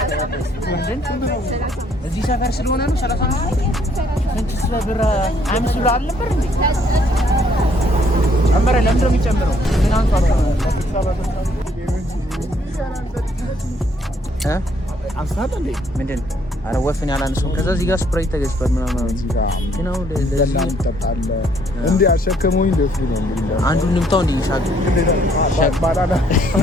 እዚህ ሰፈር ስለሆነ ነው 35 ስንት ብር 5 ብር አልነበር እንዴ? ጨመረ። ለምንድን ነው የሚጨምረው? ምን አንሷል? አንሳት እንዴ ምንድን አረ ወፍን ያላነሰው ከዛ እዚህ ጋር ስፕራይት ተገዝቷል ምናምን ግን አሁን ለዚህ ተጣጣለ እንዴ አሸከመውኝ ደስ ነው የሚለው አንዱን ንምታው እንዴ ሻቅ ባላላ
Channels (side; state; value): both; normal; correlation 0.66